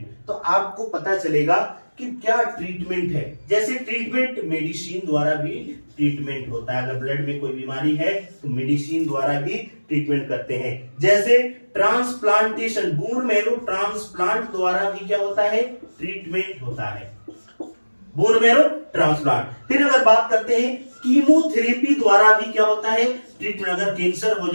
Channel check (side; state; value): both; inverted; correlation -1.00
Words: तो आपको पता चलेगा कि क्या ट्रीटमेंट है। जैसे ट्रीटमेंट मेडिसिन द्वारा भी ट्रीटमेंट होता है। अगर ब्लड में कोई बीमारी है तो मेडिसिन द्वारा भी ट्रीटमेंट करते हैं। जैसे ट्रांसप्लांटेशन, बोन मैरो ट्रांसप्लांट द्वारा भी क्या होता है? ट्रीटमेंट होता है, बोन मैरो ट्रांसप्लांट। फिर अगर बात करते हैं कीमोथेरेपी द्वारा भी क्या होता है? ट्रीटमेंट। अगर कैंसर हो